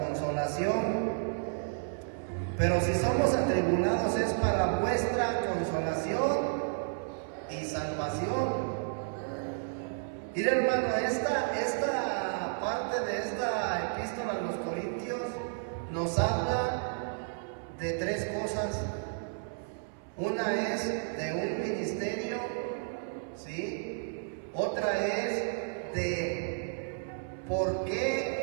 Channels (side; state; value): left; silent; 56 dB below the other